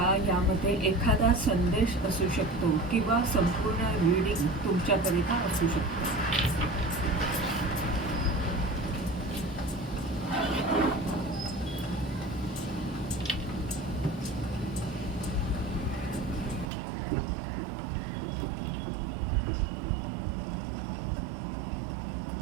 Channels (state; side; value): drops out; left; at 16.7 s